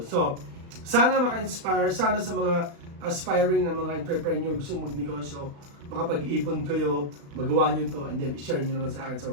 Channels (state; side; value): late; left; 35 ms